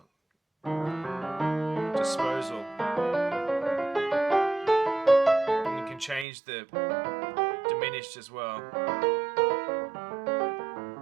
disposal. And you can change the diminished as well.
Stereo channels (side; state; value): left; drops out; at 6.2 s